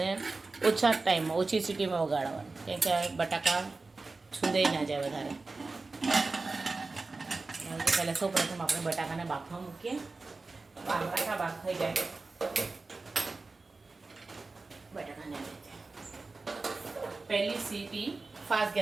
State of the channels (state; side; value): quieter; left; 3.7 dB